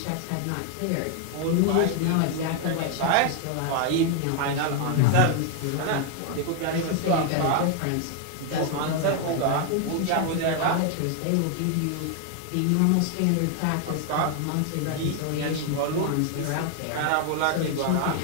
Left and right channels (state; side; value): different; both; correlation 0.00